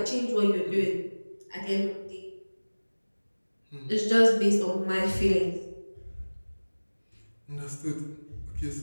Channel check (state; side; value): inverted; both; correlation -1.00